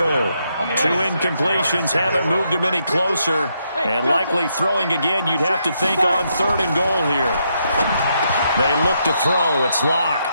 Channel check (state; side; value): inverted; both; correlation -0.78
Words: 2 incompletions haven't moved him any closer, and likely throwing again, you'd have to think on 3rd and goal here. They look to throw. It's